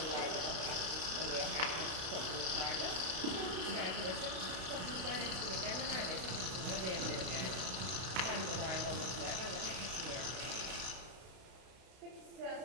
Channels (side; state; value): left; late; 32 ms